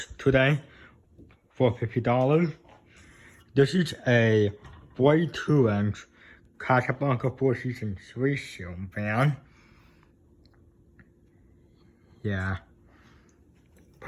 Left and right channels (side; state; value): both; identical; correlation 1.00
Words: today for $50. This is a 42-inch Casablanca Four Seasons 3 ceiling fan. Yeah,